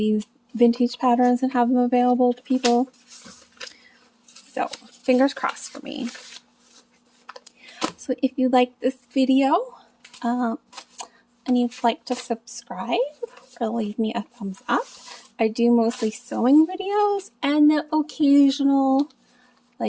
vintage patterns and have them available to people. So fingers crossed for me. So if you like this video and you'd like to subscribe or leave me a thumbs up, I do mostly sewing videos and the occasional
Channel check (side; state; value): both; identical; correlation 1.00